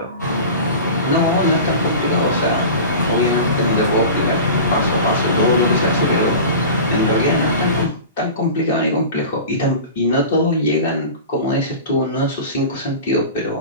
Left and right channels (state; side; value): inverted; both; correlation -0.34